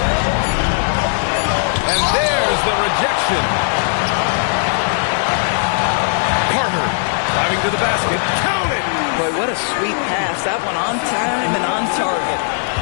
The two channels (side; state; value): right; silent; digital silence